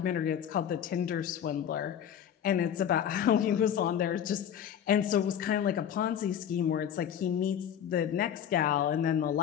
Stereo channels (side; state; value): right; quieter; 9.2 dB